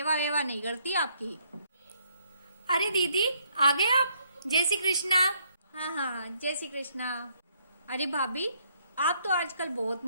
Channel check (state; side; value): inverted; both; correlation -0.70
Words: वेवा नहीं करती आपकी। अरे दीदी आ गए आप? जय श्री कृष्णा। हाँ हाँ जय श्री कृष्णा। अरे भाभी, आप तो आजकल बहुत